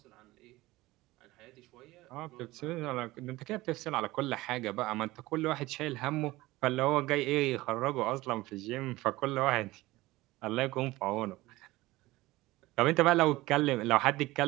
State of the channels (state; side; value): quieter; left; 19.0 dB